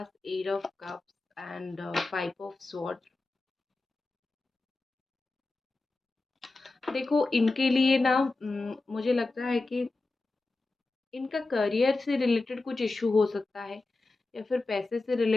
eight of cups and five of sword. देखो इनके लिए ना मुझे लगता है कि इनका करियर से रिलेटेड कुछ इशू हो सकता है, या फिर पैसे से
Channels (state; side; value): quieter; right; 3.3 dB